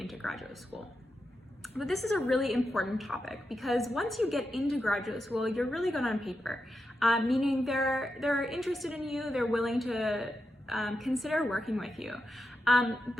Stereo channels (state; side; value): normal; both; correlation 0.87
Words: graduate school. But this is a really important topic because once you get into graduate school, you're really good on paper, meaning they're interested in you, they're willing to consider working with you.